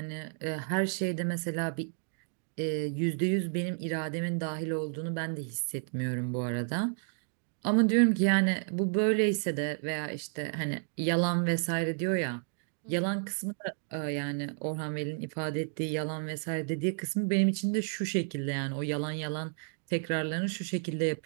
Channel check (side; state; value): left; silent; digital silence